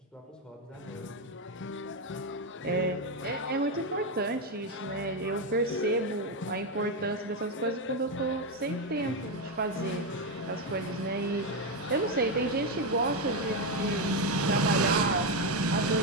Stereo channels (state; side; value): normal; both; correlation 0.07